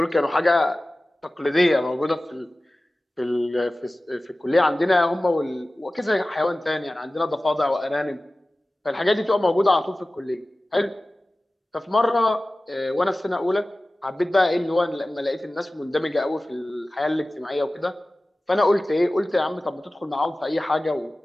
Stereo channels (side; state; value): both; normal; correlation 0.97